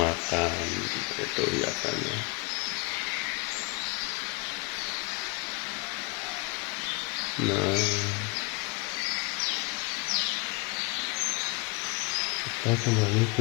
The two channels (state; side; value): quieter; right; 29.1 dB